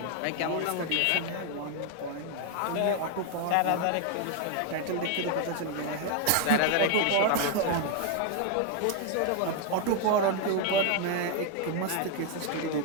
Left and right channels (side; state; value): both; different; correlation 0.01